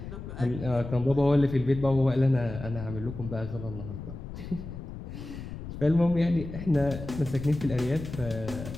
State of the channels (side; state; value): left; noise; rumble, 10 dB below the sound